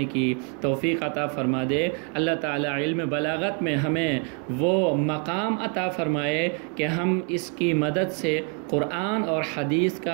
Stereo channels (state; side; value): quieter; left; 38.5 dB